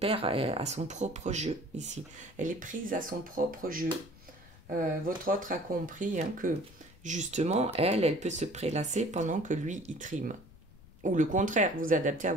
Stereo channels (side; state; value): left; noise; rumble, 23 dB below the sound